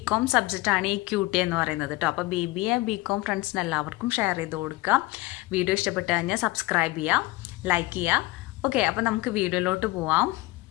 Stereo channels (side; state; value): right; quieter; 20.8 dB